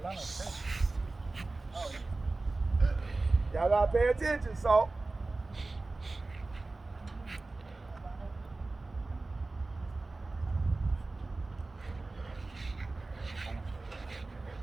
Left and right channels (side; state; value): left; quieter; 3.3 dB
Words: Y'all gotta pay attention, salt.